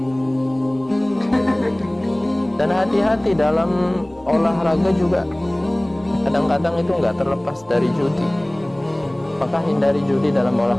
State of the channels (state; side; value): noise; left; hum, 29 dB below the sound